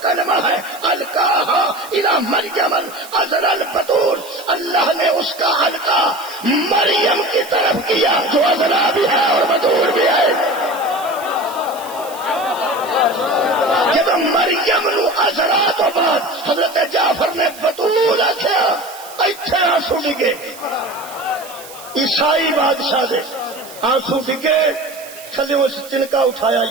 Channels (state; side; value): noise; right; hiss, 17 dB below the sound